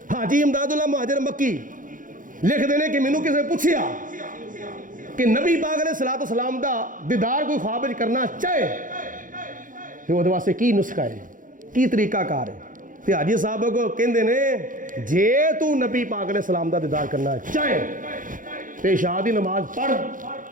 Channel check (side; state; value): left; late; 0.39 ms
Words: हाजी इमदादुल्लाह मुहाजिर मक्की लिखते हैं कि मैनू किसी पूछया कि नबी पाक अलैहिस्सलाम दा दीदार कोई ख्वाब विच करना चाहे तो वो वास्ते की नुस्खा है, की तरीकाकार है। तो हाजी साहब को कहते ने जे तू नबी पाक अलैहिस्सलाम दा दीदार करना चाहे तो इशा दी नमाज पढ़,